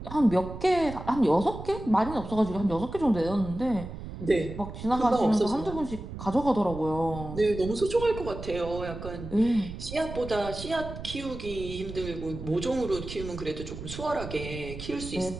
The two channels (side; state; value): right; noise; rumble, 10 dB below the sound